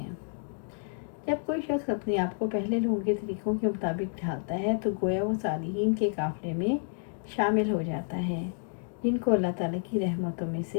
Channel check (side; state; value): right; silent; 58 dB below the other